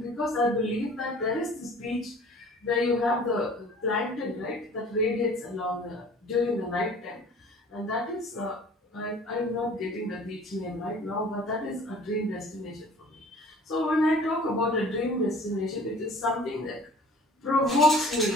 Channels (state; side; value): normal; both; correlation 0.48